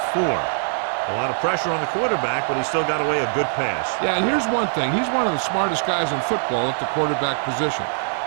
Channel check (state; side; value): silent; left; digital silence